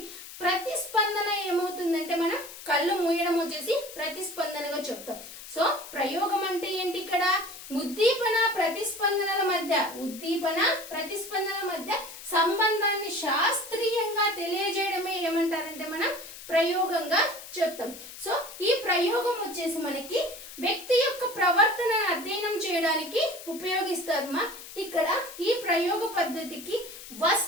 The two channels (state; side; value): noise; left; hiss, 14 dB below the sound